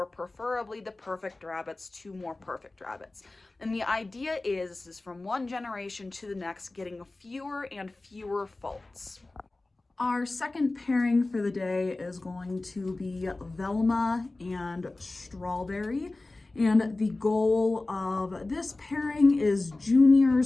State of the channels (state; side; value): quieter; right; 3.1 dB